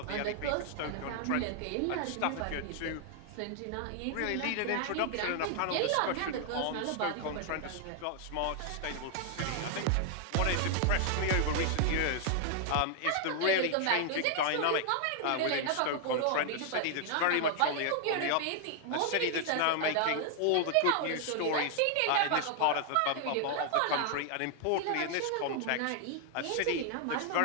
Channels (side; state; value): both; different; correlation 0.00